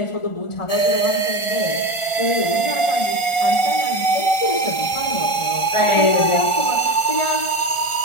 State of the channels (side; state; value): right; late; 1.4 ms